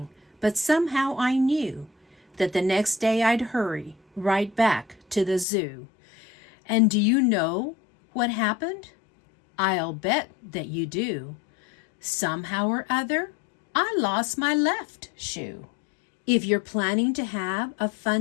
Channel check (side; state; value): right; drops out; at 5.5 s